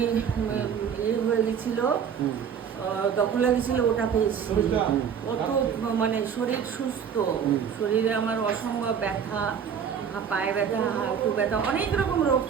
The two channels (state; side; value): quieter; left; 7.6 dB